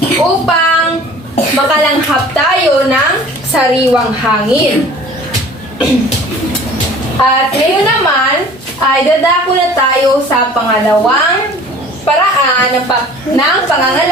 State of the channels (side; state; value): both; normal; correlation 0.47